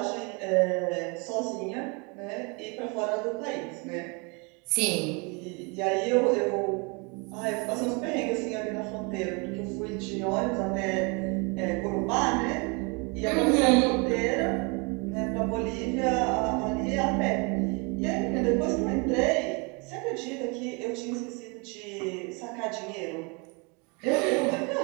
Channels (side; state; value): left; quieter; 31.1 dB